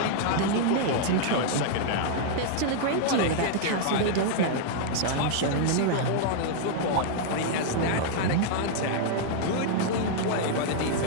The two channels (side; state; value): both; different; correlation -0.01